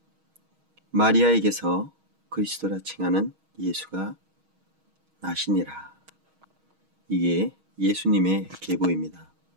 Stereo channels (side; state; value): left; late; 6.3 ms